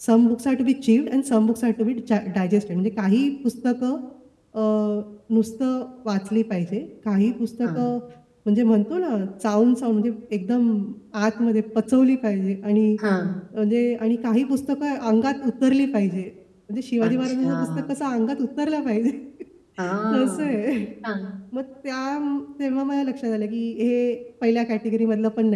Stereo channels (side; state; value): both; identical; correlation 1.00